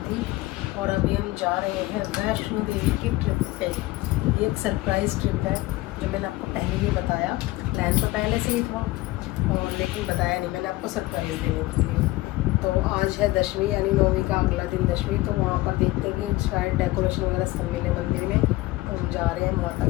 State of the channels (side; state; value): right; quieter; 18.8 dB